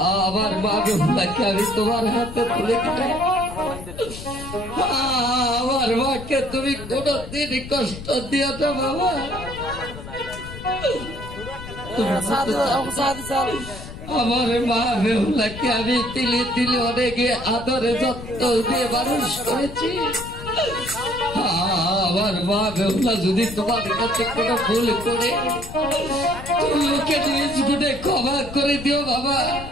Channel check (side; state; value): left; noise; rumble, 12 dB below the sound